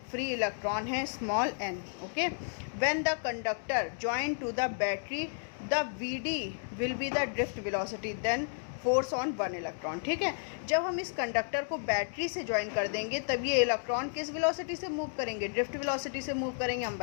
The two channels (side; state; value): right; silent; digital silence